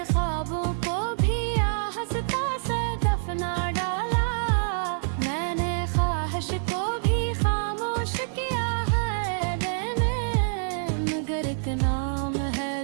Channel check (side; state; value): left; silent; digital silence